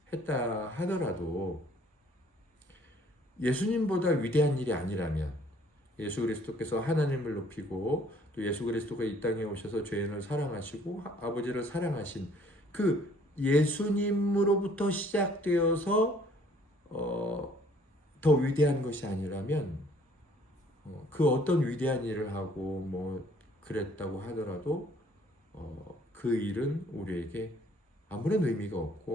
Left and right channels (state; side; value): normal; both; correlation 0.59